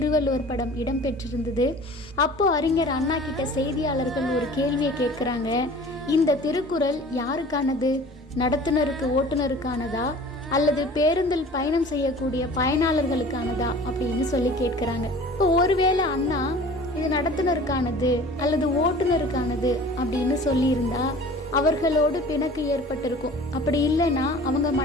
படம் இடம்பெற்றிருந்தது. அப்போ அறிஞர் அண்ணா கிட்ட செய்தியாளர்கள் ஒரு கேள்வியை கேட்குறாங்க. இந்த திருக்குறள் யாருக்கானது? நடத்துனருக்கு ஓட்டுநருக்கானதா அல்லது பேருந்தில் பயணம் செய்யக்கூடிய பயனாளர்களுக்கானதா அப்படின்னு சொல்லி கேட்குறாங்க. இப்போ ஒருவேளை அண்ணா இது நடத்துனருக்கானது அல்லது ஓட்டுநருக்கானது அப்படின்னு சொல்லியிருந்தா அவர்களோடு பிணக்கு ஏற்பட்டிருக்கும். அப்படி இல்லைன்னா அவங்க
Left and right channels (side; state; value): both; normal; correlation 0.44